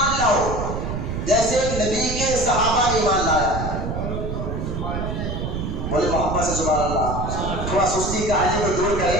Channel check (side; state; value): right; noise; rumble, 3 dB below the sound